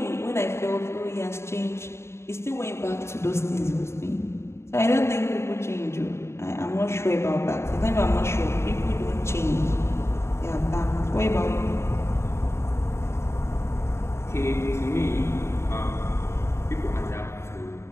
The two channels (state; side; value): late; right; 0.13 ms